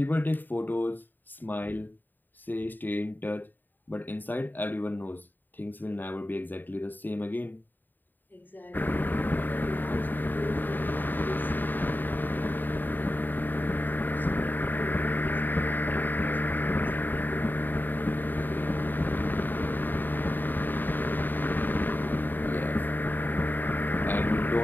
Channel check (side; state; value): right; late; 0.090 ms